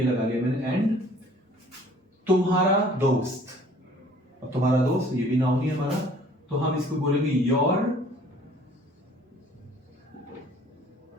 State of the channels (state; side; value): normal; both; correlation 0.54